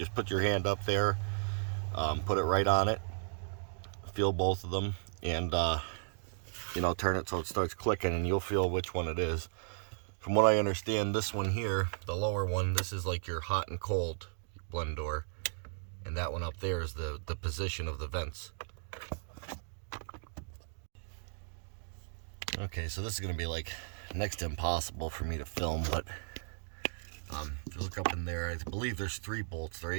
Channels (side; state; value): left; silent; digital silence